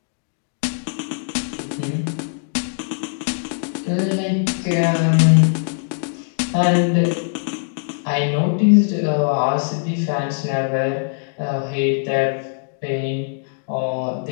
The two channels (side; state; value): right; silent; digital silence